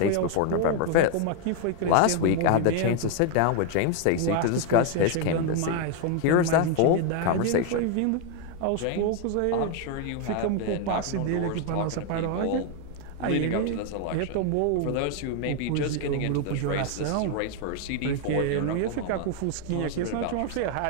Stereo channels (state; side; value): different; both; correlation 0.01